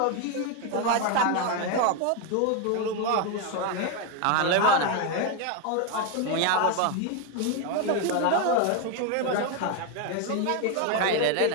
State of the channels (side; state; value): both; different; correlation 0.01